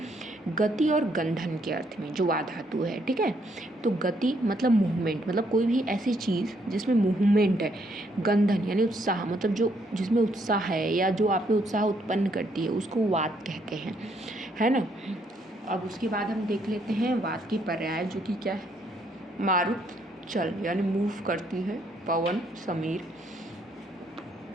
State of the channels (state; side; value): normal; both; correlation 0.71